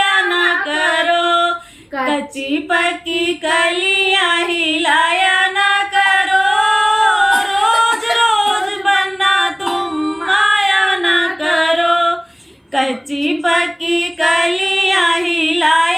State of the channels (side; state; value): both; identical; correlation 1.00